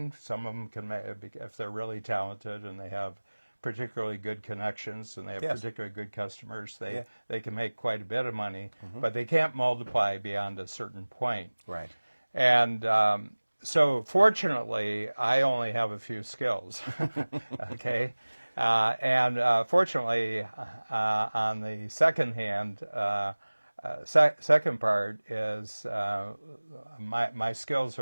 Some of them can make, if they're really talented and they have particularly good connections and they have Yes. particularly good customers. Yeah. They can make quite a bit of money, but they can't multiply beyond a certain point. Right. And so, fortunately, I only have a few skills. Okay. And fortunately, on the second hand, second part is my skills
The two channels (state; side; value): inverted; both; correlation -1.00